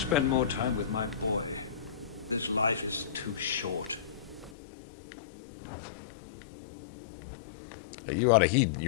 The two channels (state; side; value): drops out; right; at 4.5 s